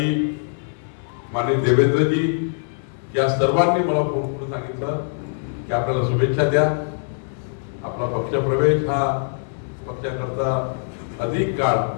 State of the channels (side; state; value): right; silent; 62 dB below the other